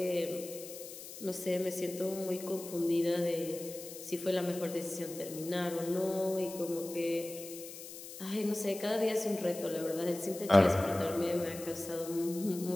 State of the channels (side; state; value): left; noise; hiss, 12 dB below the sound